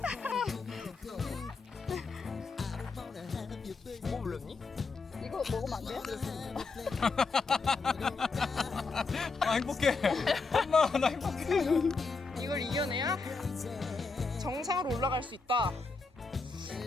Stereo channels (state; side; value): quieter; right; 4.2 dB